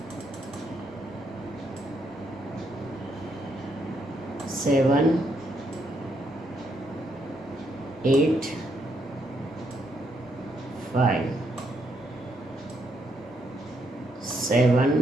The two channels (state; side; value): normal; both; correlation 0.76